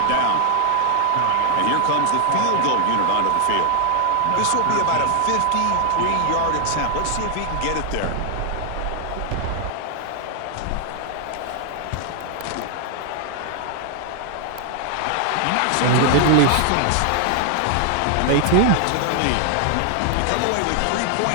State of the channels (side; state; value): both; different; correlation 0.00